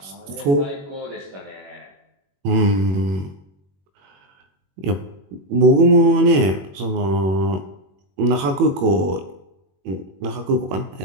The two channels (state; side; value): late; left; 21 ms